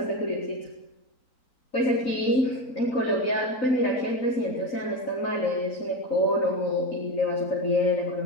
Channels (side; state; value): right; late; 3.9 ms